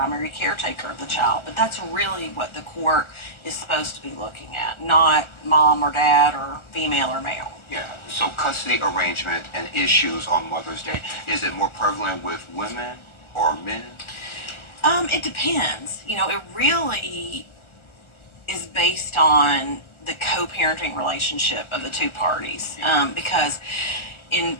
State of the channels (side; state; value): right; late; 1.4 ms